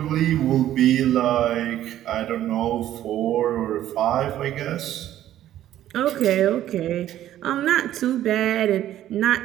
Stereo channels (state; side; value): quieter; left; 12.5 dB